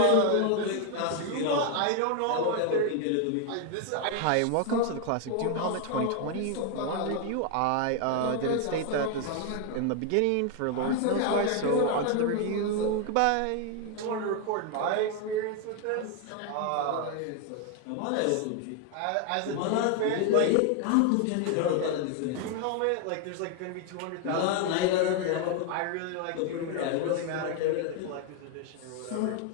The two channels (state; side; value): different; both; correlation 0.01